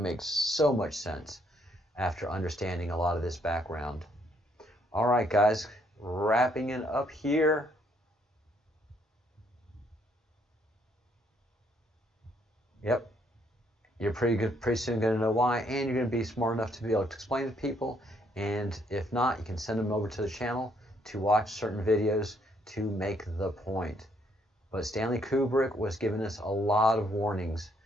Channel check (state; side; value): normal; both; correlation 0.69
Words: so much sense after understanding a lot of this background. All right, guys, wrapping it up here. Yep, you're pretty soon going to know why, and you're going to be smart enough to be able to explain to people. And if not, you can send them over to the channel to watch certain videos to make the point. But Stanley Kubrick was giving us a lot of warnings